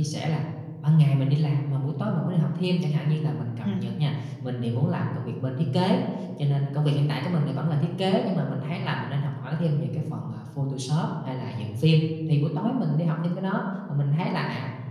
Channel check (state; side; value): identical; both; correlation 1.00